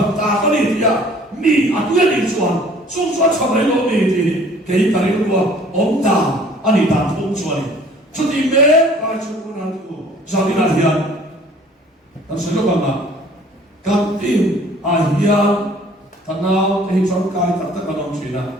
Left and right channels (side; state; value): both; normal; correlation 0.53